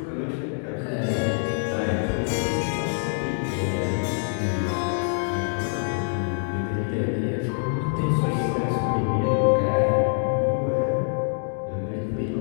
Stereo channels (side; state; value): right; silent; 62 dB below the other